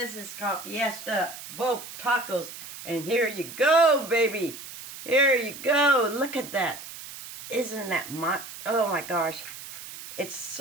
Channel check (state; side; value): noise; right; hiss, 13 dB below the sound